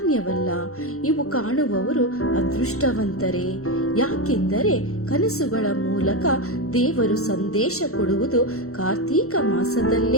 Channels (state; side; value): late; right; 0.64 ms